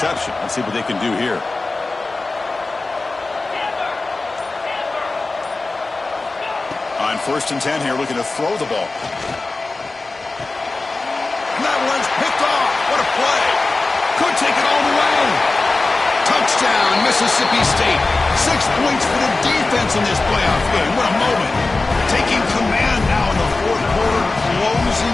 Let's see what they can do here. On 1st and 10 here, looking to throw the ball. And that one's picked off. What a play. Could take it all the way. Touchdown, Mississippi State. 6 points for the defense in this playoff game. What a moment. Taking command now in the 4th quarter,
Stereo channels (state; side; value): quieter; right; 3.4 dB